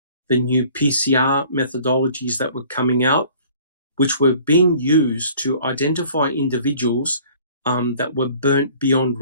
the new PCR methodologies that were coming out, which were being used to identify individuals that were burnt beyond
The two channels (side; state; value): both; inverted; correlation -0.52